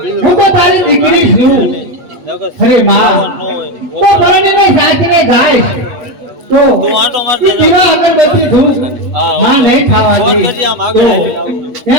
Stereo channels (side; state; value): left; late; 8.3 ms